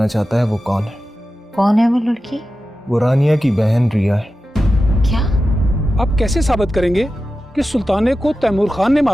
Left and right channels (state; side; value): normal; both; correlation 0.93